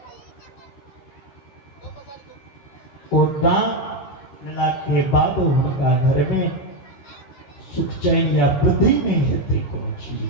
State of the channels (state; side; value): late; right; 15 ms